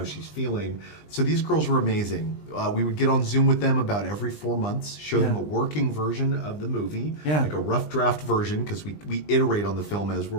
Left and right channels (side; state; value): right; late; 20 ms